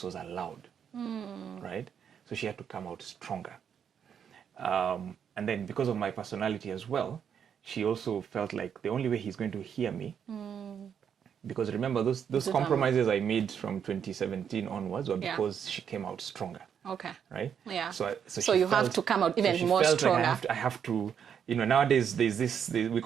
was allowed, right? So she had to come out stronger. And then because of my personality as well, she also felt like the only way he's going to hear me, because remember those compromises I made from 2017 onwards were because she came out stronger. Okay. Right? Yeah. So you have to come out even more stronger. Like I have to, nowadays there's this, we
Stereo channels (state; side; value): quieter; left; 8.0 dB